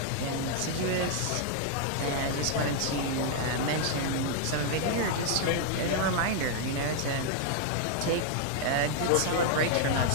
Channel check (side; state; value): both; different; correlation -0.01